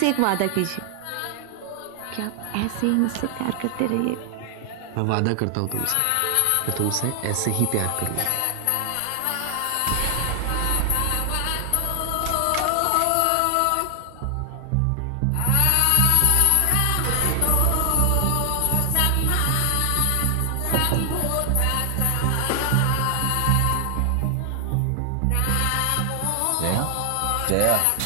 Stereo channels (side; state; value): both; different; correlation 0.00